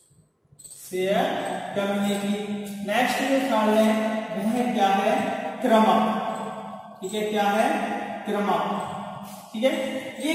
नेक्स्ट जो थर्ड है वह क्या है, क्रमक, ठीक है, क्या है, क्रमक, ठीक है। ये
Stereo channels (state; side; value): identical; both; correlation 1.00